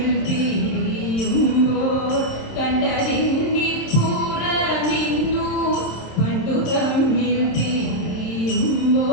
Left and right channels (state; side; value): late; right; 26 ms